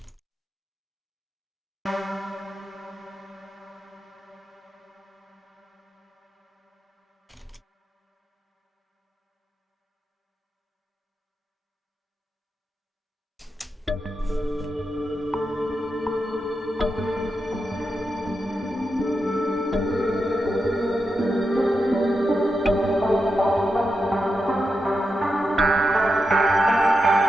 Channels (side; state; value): both; normal; correlation 0.87